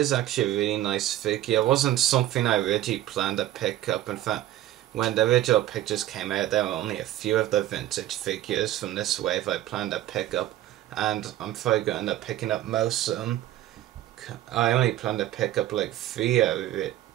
actually a really nice figure. It wasn't something I originally planned to pick up. In fact, when the original pictures came out, there were only a few of the vintage figures from this wave I planned to pick up, and I'm probably going to end up picking up most of them. I only planned to pick up like 3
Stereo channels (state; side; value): quieter; left; 13.6 dB